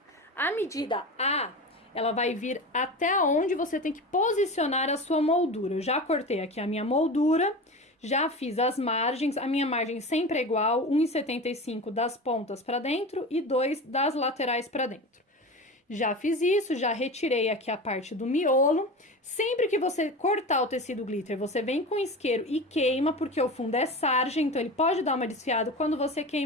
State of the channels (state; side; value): normal; both; correlation 0.29